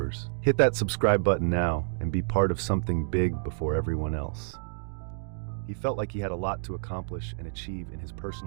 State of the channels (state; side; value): silent; left; digital silence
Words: Hit that subscribe button now and be part of something big before everyone else. He felt like he had a lot to accomplish and achieve in his